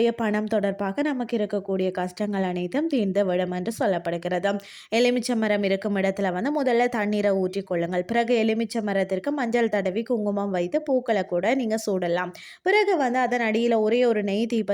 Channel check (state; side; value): identical; both; correlation 1.00